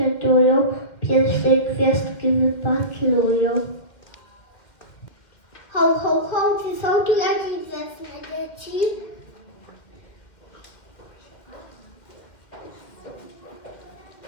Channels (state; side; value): late; right; 1.8 ms